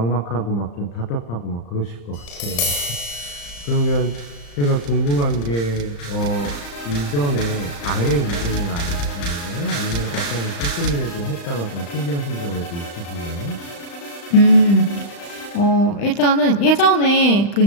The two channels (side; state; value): right; late; 35 ms